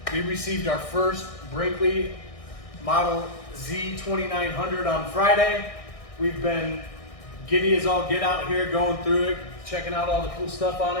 We received our first Brinkley Model Z2900 on Friday. We've been giddy as all get out here, going through it, checking out all the cool stuff on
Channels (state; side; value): late; right; 1.6 ms